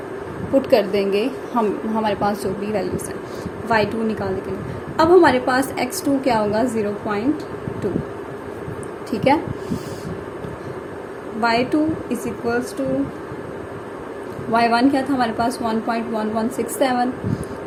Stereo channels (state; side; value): identical; both; correlation 1.00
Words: पुट कर देंगे हमारे पास जो भी वैल्यूज़ हैं y2 निकालने के लिए। अब हमारे पास x2 क्या होगा 0.2, ठीक है। y2 is equals to y1 क्या था हमारे पास 1.1167,